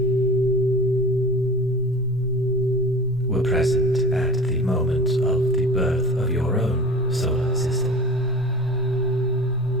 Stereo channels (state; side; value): normal; both; correlation 0.37